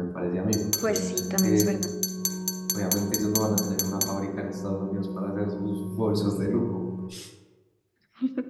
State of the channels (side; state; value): both; identical; correlation 1.00